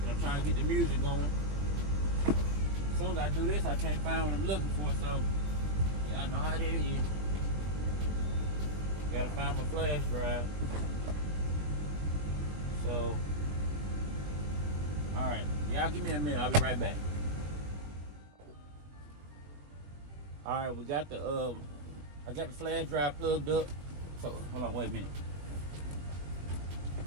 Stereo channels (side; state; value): left; late; 20 ms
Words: I'm trying to get the music going. As soon as I do this, I can't find what I'm looking for, so y'all know how that is. Gotta find my flash drive. So, all right, y'all give me a minute. I'll be right back. All right, we got the I got the flash drive plugged up. So hold on, wait a minute.